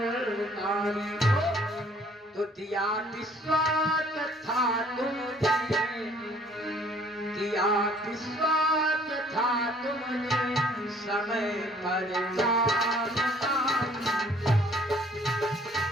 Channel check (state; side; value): normal; both; correlation 0.57